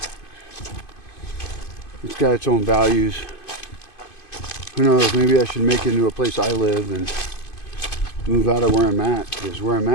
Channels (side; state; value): right; late; 2.5 ms